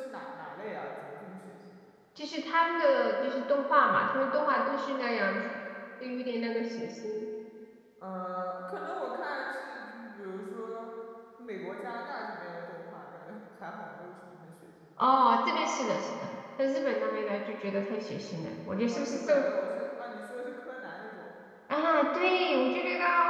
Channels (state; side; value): identical; both; correlation 1.00